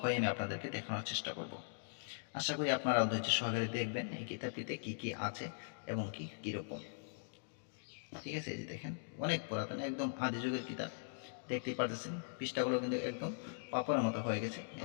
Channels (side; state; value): right; silent; digital silence